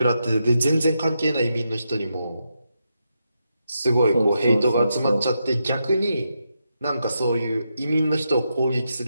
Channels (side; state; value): both; inverted; correlation -0.84